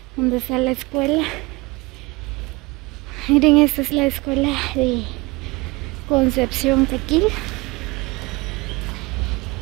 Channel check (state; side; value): quieter; left; 24.3 dB